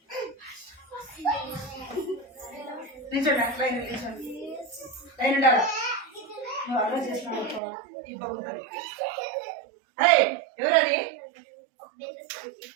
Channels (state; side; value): drops out; left; at 7.6 s